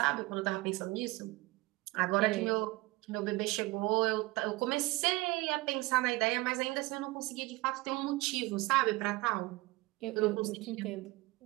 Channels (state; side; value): quieter; left; 21.4 dB